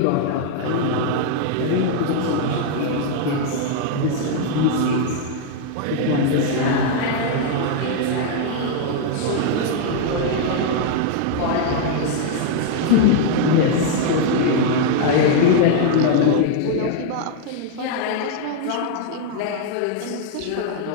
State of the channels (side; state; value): both; different; correlation 0.00